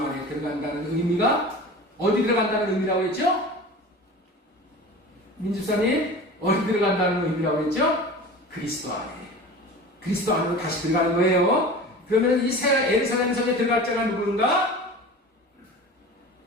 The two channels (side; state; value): both; normal; correlation 0.36